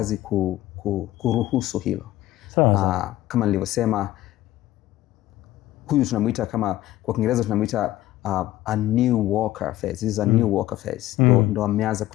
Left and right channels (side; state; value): right; quieter; 15.3 dB